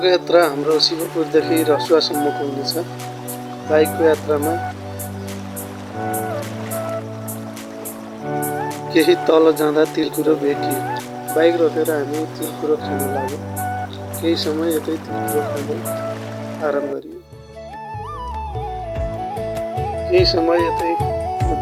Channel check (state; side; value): identical; both; correlation 1.00